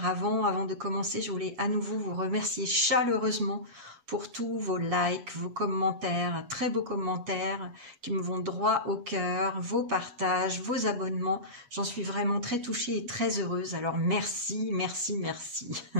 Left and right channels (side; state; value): left; late; 8.2 ms